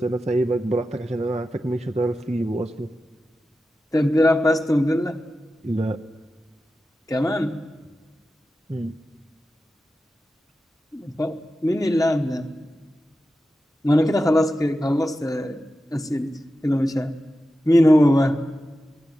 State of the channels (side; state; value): both; normal; correlation 0.92